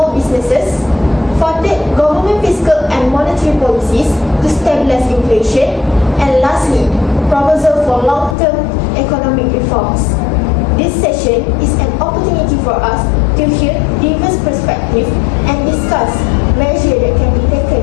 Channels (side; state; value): right; drops out; at 8.3 s